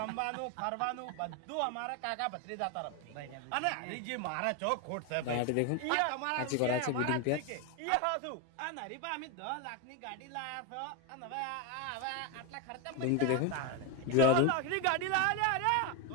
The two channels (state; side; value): different; both; correlation 0.02